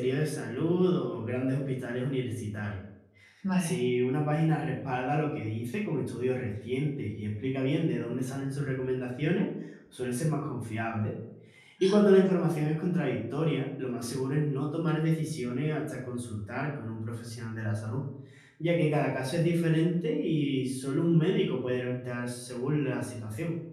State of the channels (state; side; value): identical; both; correlation 1.00